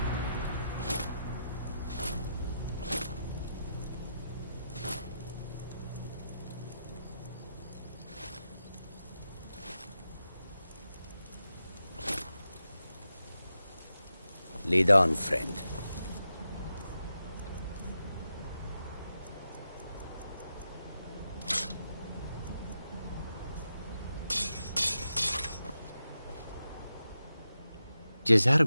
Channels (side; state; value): both; inverted; correlation -0.87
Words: Lead on, friend.